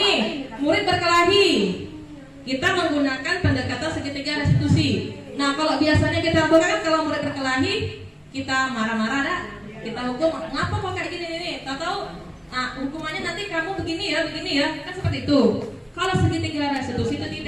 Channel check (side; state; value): both; identical; correlation 1.00